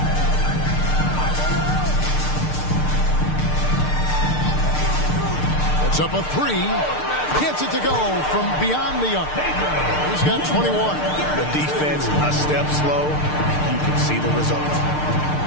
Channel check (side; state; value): right; late; 6.6 ms